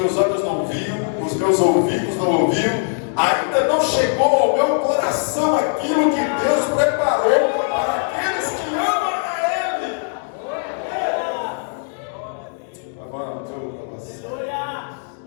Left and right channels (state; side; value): silent; right; digital silence